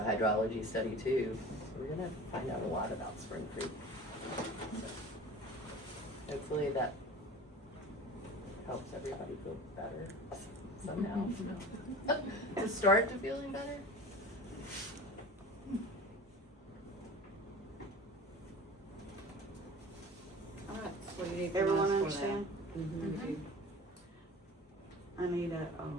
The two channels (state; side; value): normal; both; correlation 0.39